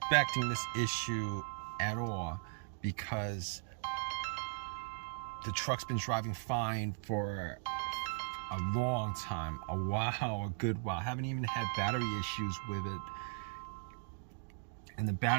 this issue at all, because the truck's been driving fine for a long time, a good while. Haven't even had battery issues with it, and the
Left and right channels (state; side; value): silent; left; 53 dB below the other